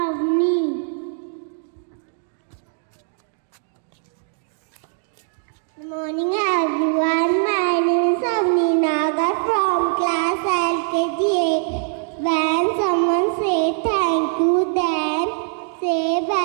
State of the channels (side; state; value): left; silent; 59 dB below the other